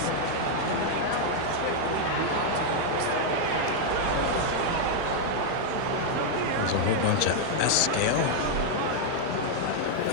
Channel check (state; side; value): different; both; correlation 0.00